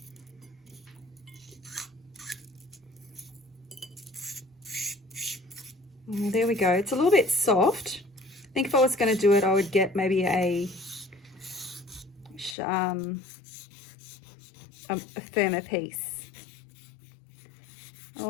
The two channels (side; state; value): right; drops out; at 12.6 s